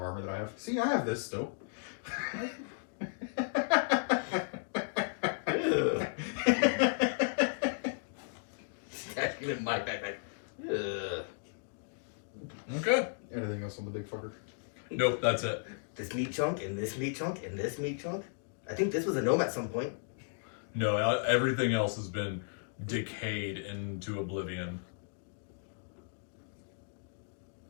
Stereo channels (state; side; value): silent; right; digital silence